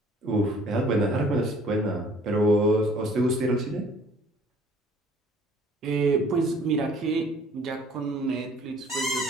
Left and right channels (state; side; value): normal; both; correlation 0.55